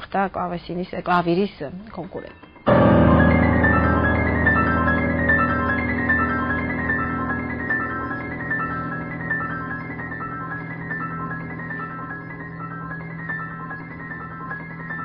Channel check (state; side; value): identical; both; correlation 1.00